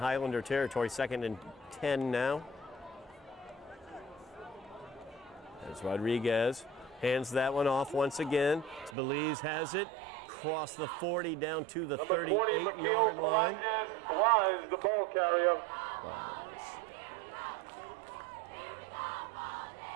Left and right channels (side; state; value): left; drops out; at 9.0 s